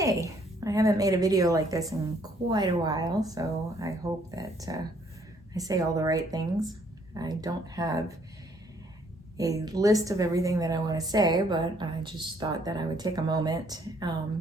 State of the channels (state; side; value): normal; both; correlation 0.65